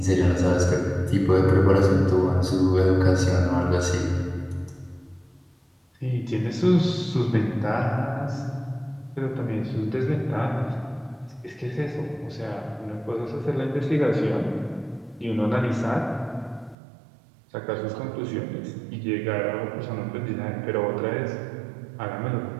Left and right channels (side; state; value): left; drops out; at 16.8 s